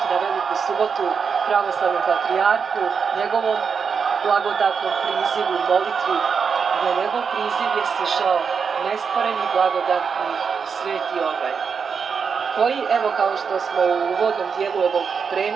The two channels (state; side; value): quieter; left; 6.0 dB